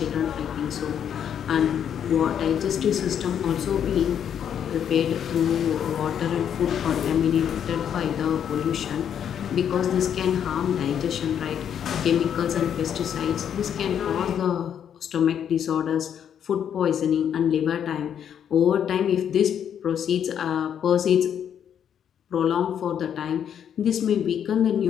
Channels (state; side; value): quieter; right; 8.8 dB